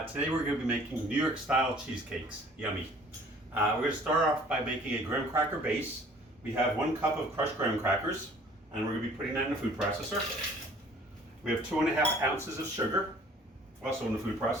Today we're going to be making New York style cheesecakes. Yummy. We're going to start off by making a graham cracker base. We have 1 cup of crushed graham crackers and we're going to be putting that in a food processor. We have 2.5 ounces of sugar, also in the food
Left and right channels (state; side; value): normal; both; correlation 0.53